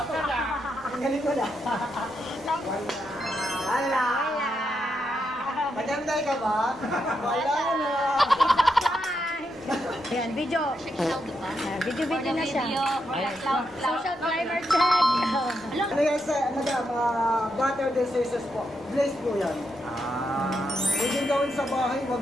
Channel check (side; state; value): left; noise; rumble, 29 dB below the sound